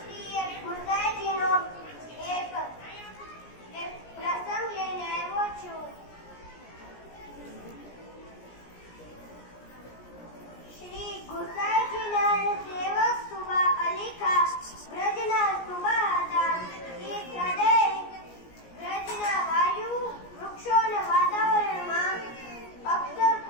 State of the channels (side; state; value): right; late; 17 ms